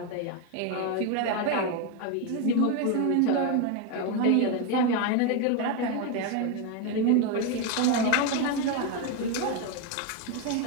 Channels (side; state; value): both; different; correlation 0.02